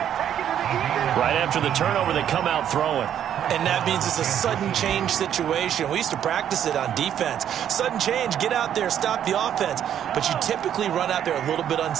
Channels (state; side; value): quieter; left; 9.8 dB